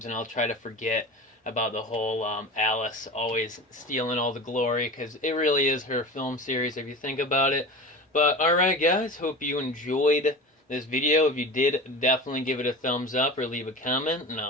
and I'll try to forget about the whole Alice always stealing all the glory, because it really is her film series if you think about it. But alright guys, hope you enjoyed this video. If you did, definitely give it a thumbs up or leave a comment, and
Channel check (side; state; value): both; normal; correlation 0.32